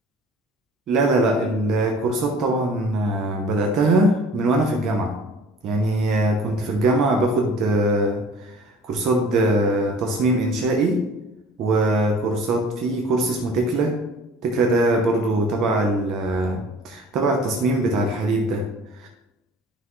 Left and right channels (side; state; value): both; normal; correlation 0.48